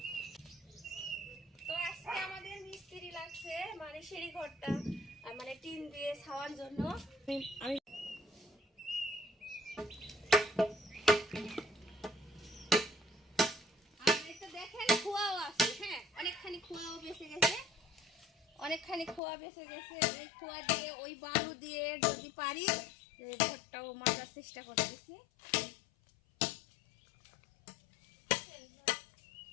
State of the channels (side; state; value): right; drops out; at 19.2 s